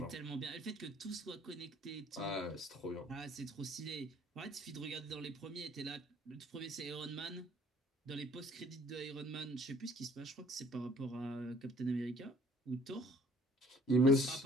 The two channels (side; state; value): both; normal; correlation 0.56